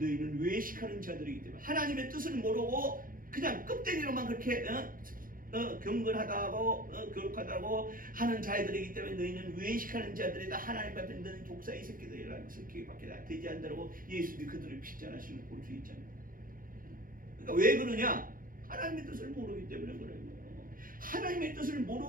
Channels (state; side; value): late; left; 0.41 ms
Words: 외식하는 자들이기 때문에 하나님의 뜻을 모르고 그냥 껍데기로만 그렇게 경건하다고 거룩하다고 하는 자들이기 때문에 너희는 외식하는 자들이다. 하나님 앞에 너는 독사의 새끼들이라는 새끼밖에 되지 않다고 예수님이 그들을 핍잔하시는 걸 볼 수 있잖아요. 그러니까 왜 그러냐? 하나님의 뜻을 모르기 때문에 그래요. 하나님의 뜻을